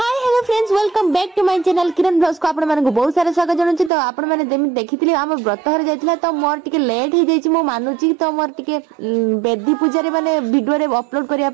hello friends welcome back to my channel Kiran blogs को आपण मानक बहुत सारा स्वागत जनाउछि। तो आपण माने देखिथिले हम व्रत हर जाइथिला तो मोर टिके लेट हो जाइछि मो मानुछि। तो मोर टिके बेदी पूजा रे माने वीडियो रे अपलोड करिया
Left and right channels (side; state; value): left; drops out; at 3.9 s